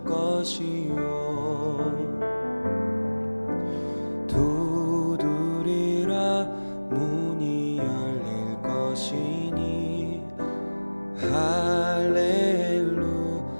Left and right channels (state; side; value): inverted; both; correlation -1.00